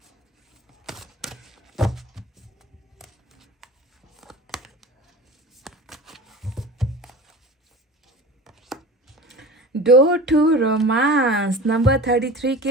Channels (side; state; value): both; normal; correlation 0.36